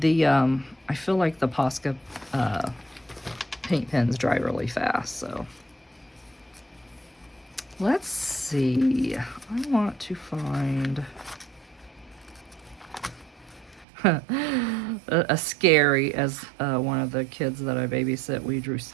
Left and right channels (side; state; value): left; drops out; at 13.9 s